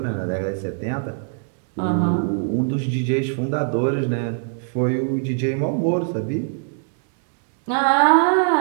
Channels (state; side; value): silent; left; digital silence